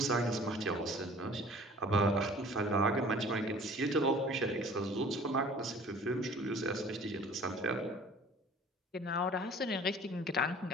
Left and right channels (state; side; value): normal; both; correlation 0.48